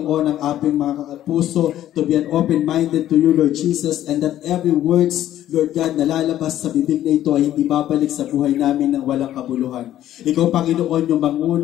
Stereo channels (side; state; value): right; quieter; 12.5 dB